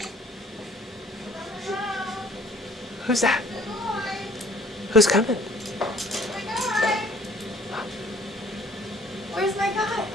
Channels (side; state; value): both; normal; correlation 0.56